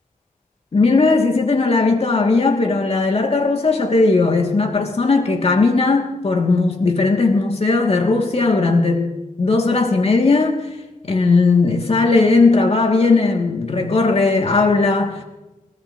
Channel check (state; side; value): quieter; right; 3.2 dB